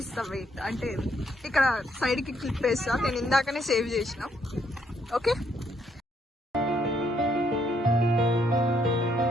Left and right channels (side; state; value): both; normal; correlation 0.72